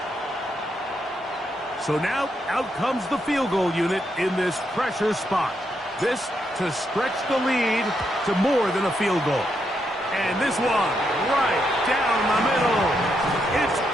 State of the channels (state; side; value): normal; both; correlation 0.80